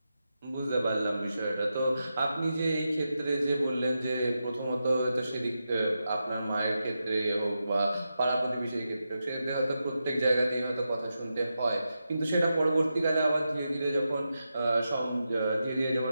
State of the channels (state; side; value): inverted; both; correlation -0.88